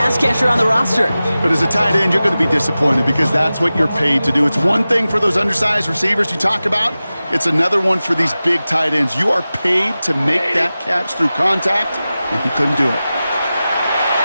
catcher on the roster. But as a tight end, you're going to be disappointed because that's what you're paid to do. It's one thing for those undersized receivers you talk about. It's another one for these big tight ends. You are paid to make that catch through contact, and he couldn't do it.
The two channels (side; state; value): both; inverted; correlation -0.95